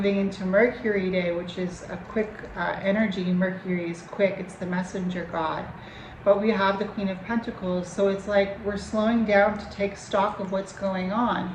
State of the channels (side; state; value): both; identical; correlation 1.00